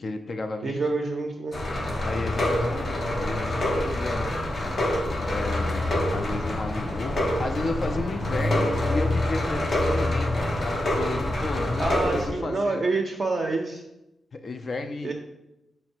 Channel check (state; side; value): normal; both; correlation 0.87